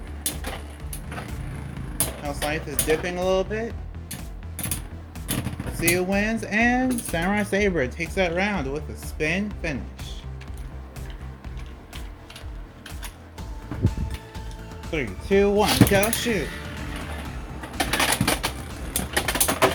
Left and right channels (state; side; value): identical; both; correlation 1.00